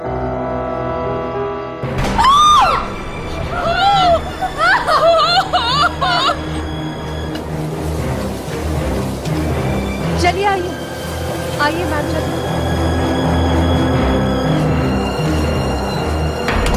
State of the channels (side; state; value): both; identical; correlation 1.00